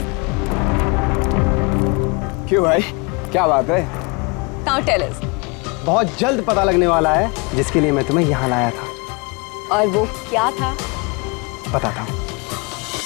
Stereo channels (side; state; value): right; quieter; 29.3 dB